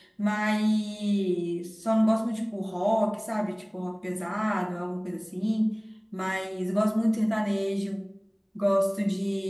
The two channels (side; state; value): both; identical; correlation 1.00